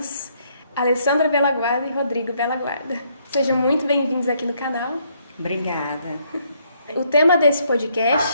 Alessandra Bellaguarda e Rodrigo Bellaguarda. Sejam muito bem-vindos aqui no canal. Obrigada. O tema desse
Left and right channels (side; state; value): both; inverted; correlation -0.70